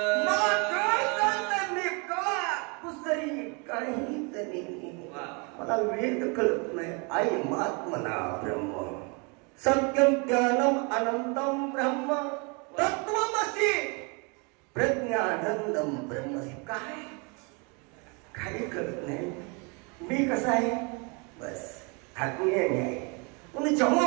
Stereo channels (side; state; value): left; quieter; 32.5 dB